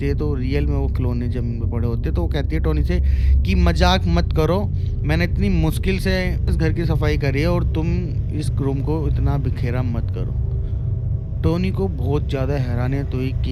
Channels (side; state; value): both; identical; correlation 1.00